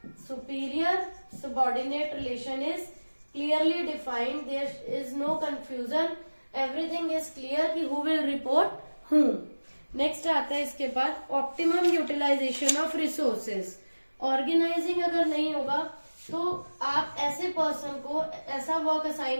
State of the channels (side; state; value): both; inverted; correlation -1.00